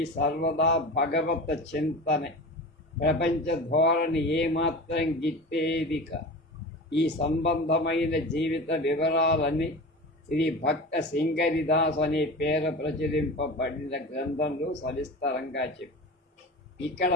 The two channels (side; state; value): both; normal; correlation 0.32